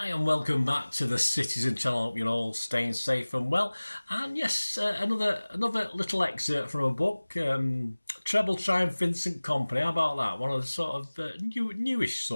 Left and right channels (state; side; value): inverted; both; correlation -1.00